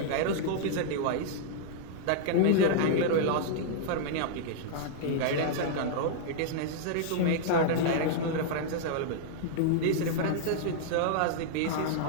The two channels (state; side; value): different; both; correlation -0.01